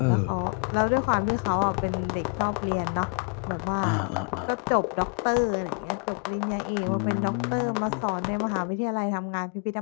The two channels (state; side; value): quieter; right; 37.6 dB